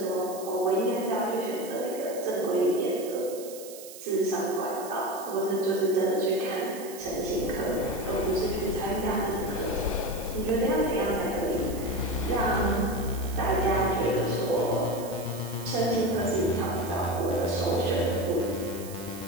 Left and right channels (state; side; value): noise; right; hiss, 15 dB below the sound